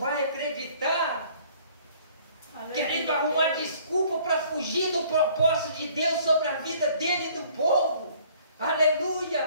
acreditar. Querendo arrumar desculpa para fugir do propósito de Deus sobre a vida dele e do povo.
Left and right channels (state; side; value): inverted; both; correlation -0.56